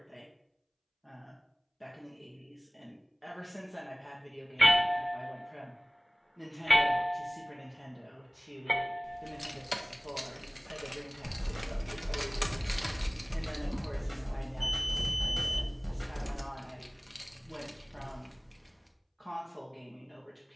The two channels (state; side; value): identical; both; correlation 1.00